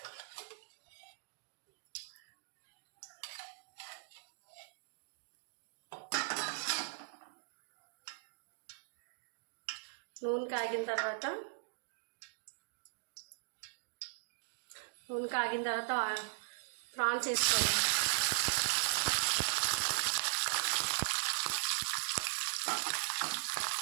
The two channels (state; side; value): silent; left; digital silence